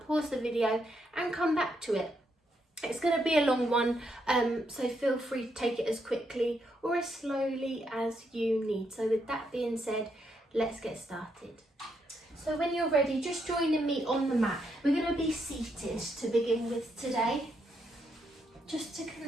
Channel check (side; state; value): both; normal; correlation 0.78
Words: pause the video and come back to it. It's going to be a long one, so feel free to take it as quickly or as slowly as you need. So with that being said, let's get started. So when you're ready, just joining me on the mat. We're going to be seated to begin with today, just to